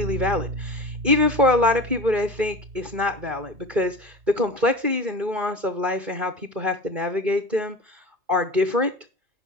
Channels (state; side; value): late; left; 2.5 ms